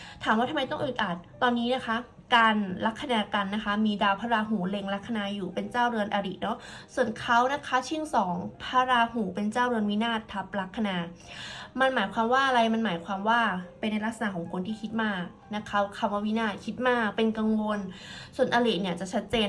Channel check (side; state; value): both; identical; correlation 1.00